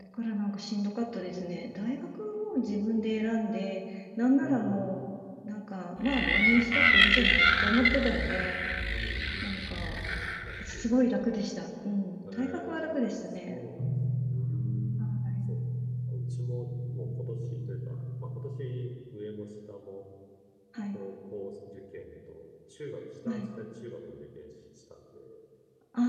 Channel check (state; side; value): identical; both; correlation 1.00